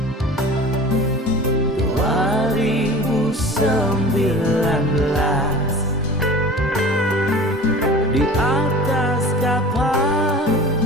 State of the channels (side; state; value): both; normal; correlation 0.39